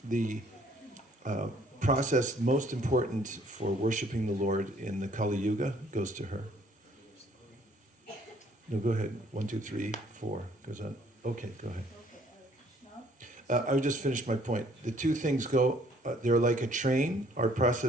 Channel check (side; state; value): both; normal; correlation 0.61